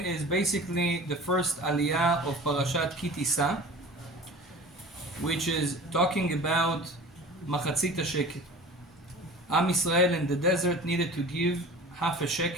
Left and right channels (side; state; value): both; normal; correlation 0.40